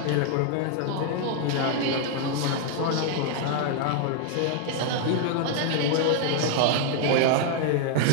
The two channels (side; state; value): both; different; correlation 0.00